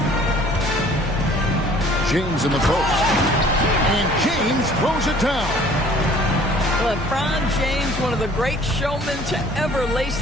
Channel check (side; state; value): both; normal; correlation 0.53